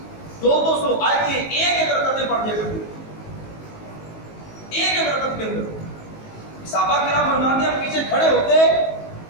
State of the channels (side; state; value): right; late; 19 ms